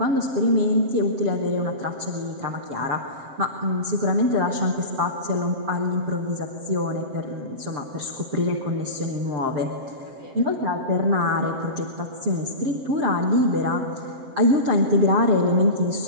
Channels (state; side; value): late; left; 7.6 ms